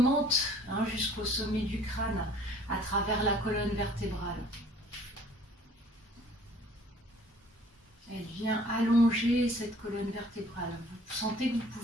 jusqu'au sommet du crâne à travers la colonne vertébrale. Elle vient allonger cette colonne vertébrale. Vous sentez que vous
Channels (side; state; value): both; normal; correlation 0.54